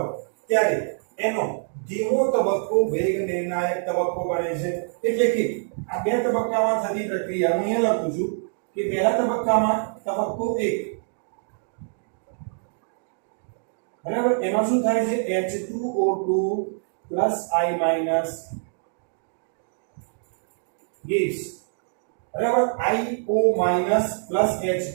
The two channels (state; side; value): silent; left; digital silence